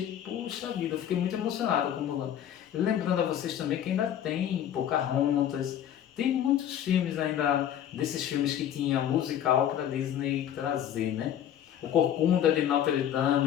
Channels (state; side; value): quieter; right; 10.3 dB